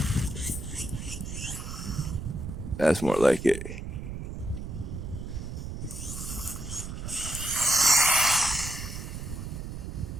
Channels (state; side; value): noise; right; rumble, 7 dB below the sound